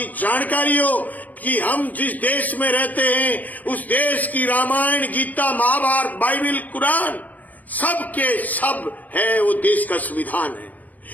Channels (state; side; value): late; right; 0.079 ms